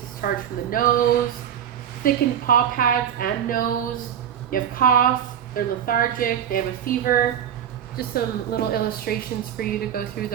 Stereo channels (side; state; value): left; quieter; 9.5 dB